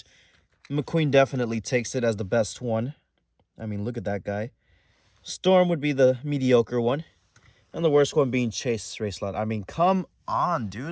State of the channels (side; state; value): both; identical; correlation 1.00